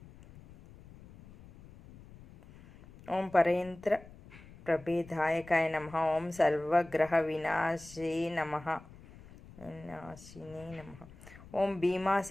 ఓం పరయంత్ర ప్రభేదాయకాయ నమః, ఓం సర్వగ్రహ వినాశినే నమః, ఓం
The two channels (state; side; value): noise; left; rumble, 20 dB below the sound